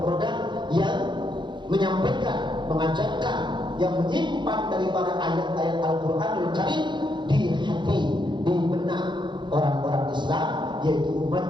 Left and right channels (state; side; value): late; left; 0.23 ms